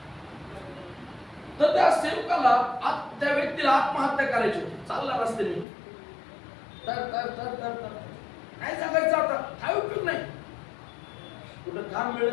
तर त्या सेवकाला त्या व्यक्तीला आत्महत्या करायची होती. चालला रस्त्याने तर काय जगायचं आता? काय उपयोग नाही. कुठं काम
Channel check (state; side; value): drops out; right; at 5.7 s